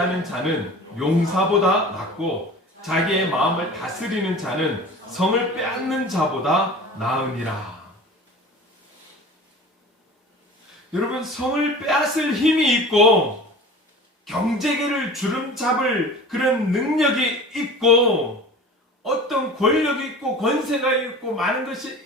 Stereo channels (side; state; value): both; normal; correlation 0.39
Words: 자는 용사보다 낫고 자기의 마음을 다스리는 자는 성을 빼앗는 자보다 나으니라. 여러분, 성을 빼앗을 힘이 있고 경제계를 주름잡을 그런 능력이 있고 어떤 권력이 있고 권세가 있고 많은 것이